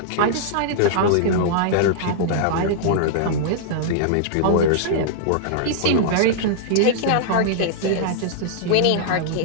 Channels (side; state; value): both; different; correlation -0.02